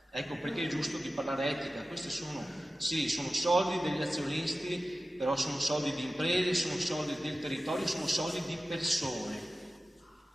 Ecco perché è giusto di parlare etica. Questi sono soldi degli azionisti, però sono soldi di imprese, sono soldi del territorio, sono soldi di persone.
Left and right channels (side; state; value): both; normal; correlation 0.95